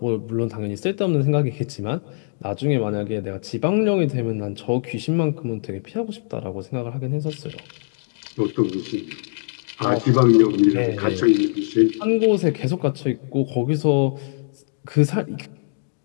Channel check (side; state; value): right; silent; digital silence